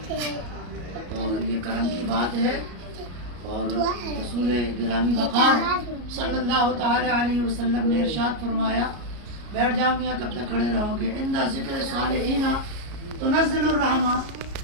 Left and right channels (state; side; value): late; left; 34 ms